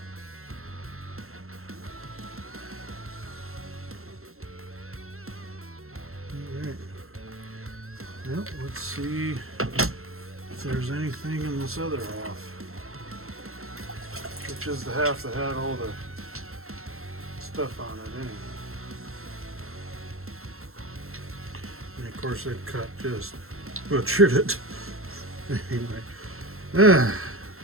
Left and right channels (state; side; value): late; left; 0.62 ms